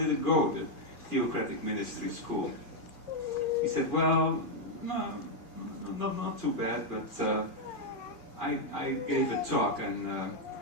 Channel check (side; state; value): left; late; 2.4 ms